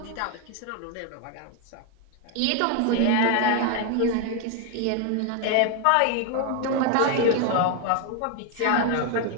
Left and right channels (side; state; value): both; different; correlation 0.01